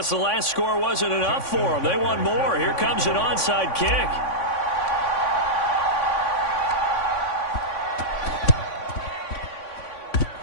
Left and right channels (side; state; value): right; late; 3.5 ms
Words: the last score wasn't enough for them. They want more. Here comes an onside kick.